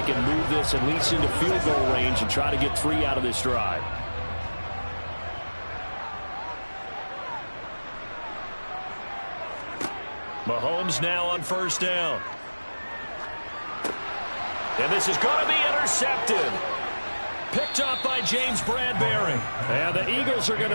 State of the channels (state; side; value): inverted; both; correlation -1.00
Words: can move this at least into field goal range and try to get 3 out of this drive. Mahomes now on first down. And this is going to be intercepted. Picked up by James Bradbury. And the Eagles are going